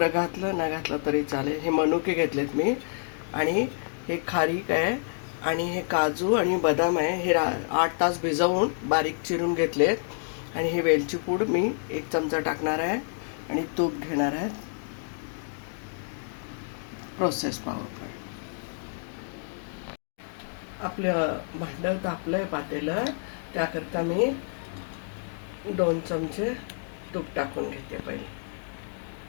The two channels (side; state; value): right; silent; digital silence